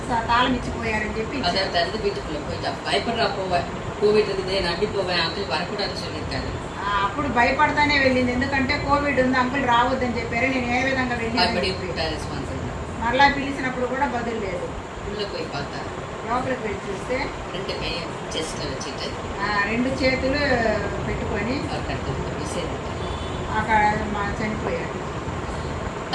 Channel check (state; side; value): identical; both; correlation 1.00